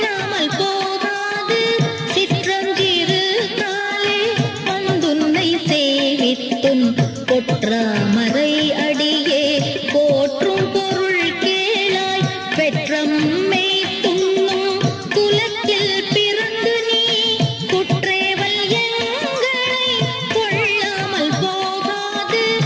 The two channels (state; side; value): identical; both; correlation 1.00